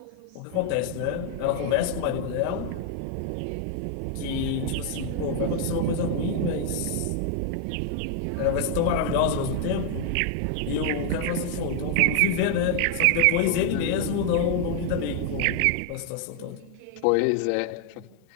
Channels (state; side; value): different; both; correlation 0.00